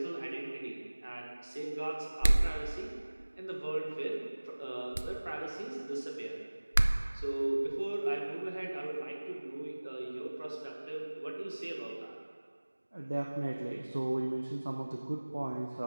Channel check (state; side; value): inverted; both; correlation -1.00